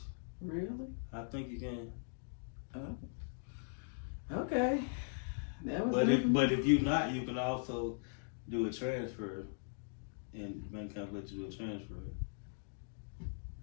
Really? I think you can. Oh. Okay. But if you're not, you can also do a transfer, and the bank account let you do a transfer. I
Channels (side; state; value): right; silent; digital silence